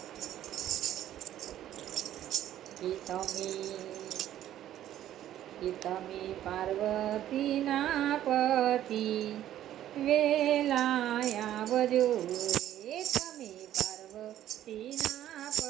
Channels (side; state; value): left; quieter; 12.2 dB